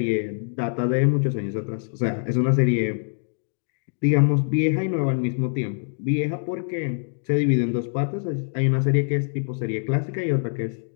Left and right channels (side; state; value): right; silent; digital silence